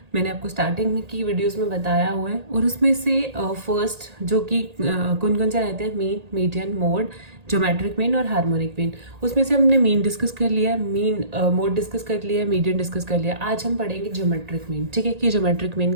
मैंने आपको स्टार्टिंग में की वीडियोस में बताया हुआ है। और उसमें से फर्स्ट जो कि कौन कौन से रहते हैं, mean, median, mode, geometric mean और हार्मोनिक मीन। उसमें से हमने मीन डिस्कस कर लिया, मीन मोड डिस्कस कर लिया, मीडियन डिस्कस कर लिया। आज हम पढ़ेंगे ज्योमेट्रिक मीन। ठीक है, कि ज्योमेट्रिक मीन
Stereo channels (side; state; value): left; late; 1.8 ms